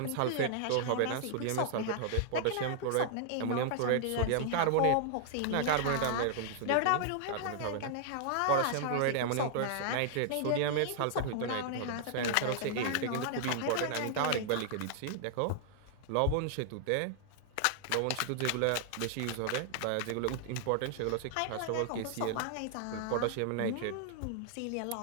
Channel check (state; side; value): different; both; correlation -0.01